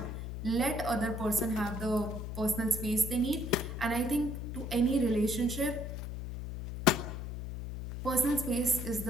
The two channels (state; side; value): noise; left; hum, 6 dB below the sound